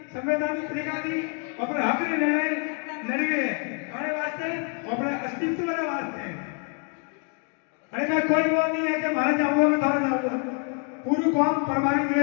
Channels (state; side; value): quieter; right; 37.9 dB